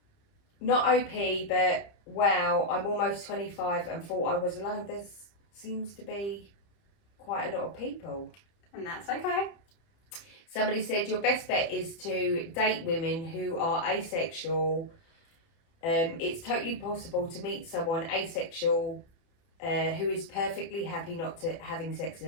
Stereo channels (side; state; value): right; late; 30 ms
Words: Not OP, but wow, I'm almost 25 and thought I was alone. There seems to be quite a lot of people. And that's okay. Somebody said your best bet is to date women who are asexual. It's totally possible to meet someone asexual who is perfectly happy not to having sex in